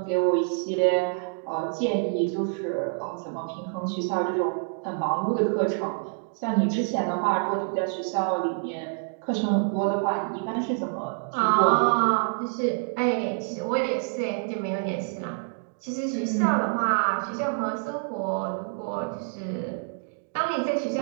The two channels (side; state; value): left; silent; 60 dB below the other